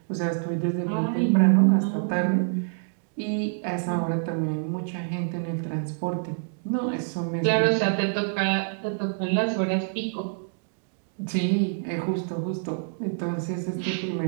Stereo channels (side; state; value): left; silent; digital silence